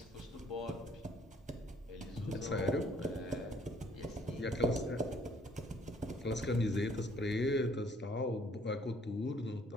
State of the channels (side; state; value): both; normal; correlation 0.62